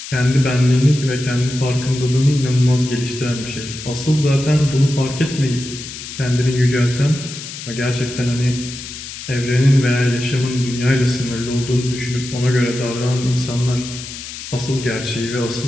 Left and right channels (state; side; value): noise; left; hiss, 11 dB below the sound